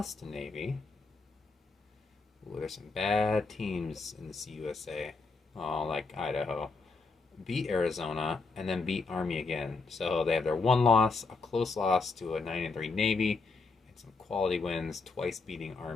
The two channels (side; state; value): right; quieter; 4.1 dB